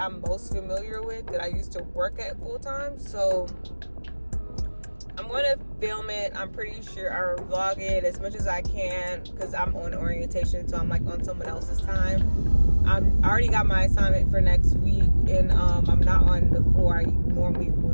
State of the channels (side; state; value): both; inverted; correlation -1.00